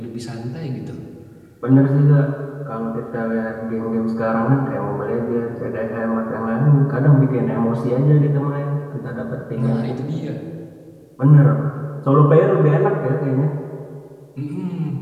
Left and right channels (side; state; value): both; identical; correlation 1.00